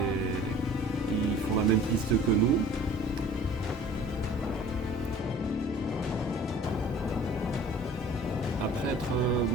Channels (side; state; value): both; normal; correlation 0.47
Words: ils font la même piste que nous. Après être